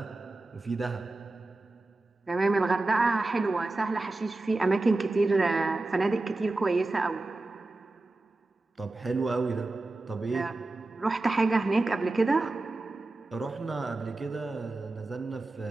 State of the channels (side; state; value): left; quieter; 3.1 dB